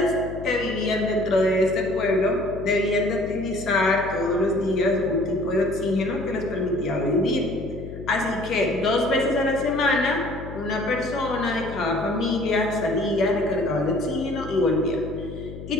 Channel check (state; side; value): noise; left; hum, 12 dB below the sound